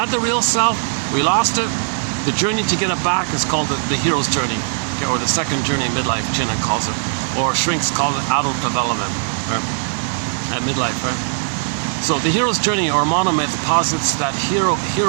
the real self, we lost it. The journey to get it back is called the hero's journey, okay, or the second journey in midlife, Chinna calls it, or shrinks call it adult development, right? At midlife, right? So the hero's journey, or monomyth, posits that hero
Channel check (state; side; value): silent; left; digital silence